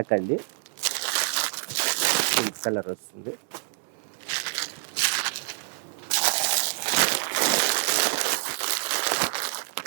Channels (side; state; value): left; silent; 60 dB below the other